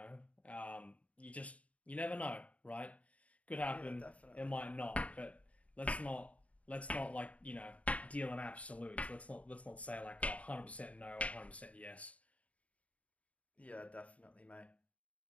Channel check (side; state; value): right; late; 0.067 ms